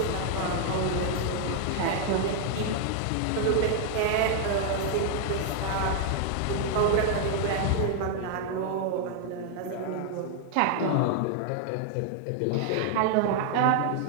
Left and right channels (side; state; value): both; different; correlation 0.00